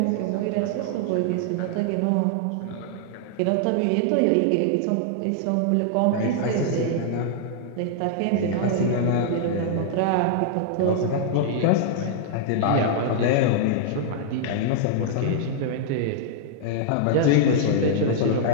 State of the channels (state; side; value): different; both; correlation -0.01